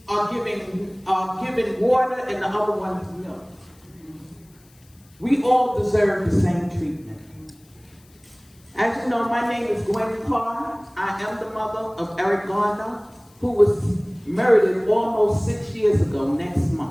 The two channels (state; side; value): noise; left; hiss, 30 dB below the sound